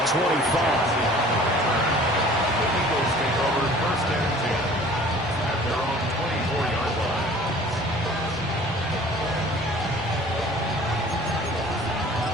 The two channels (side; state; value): both; normal; correlation 0.49